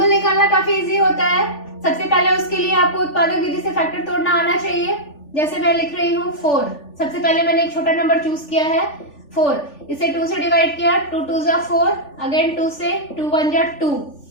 निकालना काफी इजी होता है। सबसे पहले उसके लिए आपको उत्पादक विधि से फैक्टर तोड़ना आना चाहिए। जैसे मैं लिख रही हूँ 4, सबसे पहले मैंने एक छोटा नंबर चूज किया है 4, इसे 2 से डिवाइड किया, 2 2 जा 4, अगेन 2 से, 2 1 जा 2।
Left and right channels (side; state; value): right; late; 3.4 ms